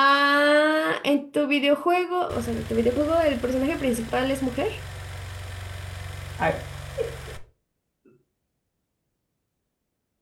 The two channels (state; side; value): identical; both; correlation 1.00